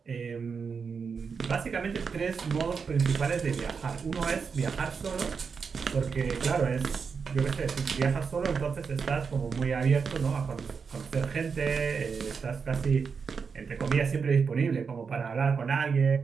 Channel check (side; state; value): left; quieter; 5.7 dB